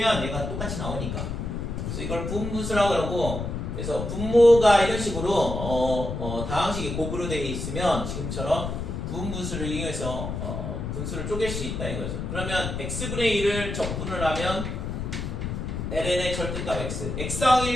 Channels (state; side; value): noise; left; rumble, 4 dB below the sound